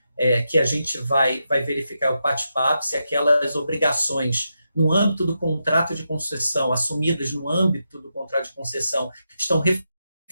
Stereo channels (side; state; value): both; inverted; correlation -0.86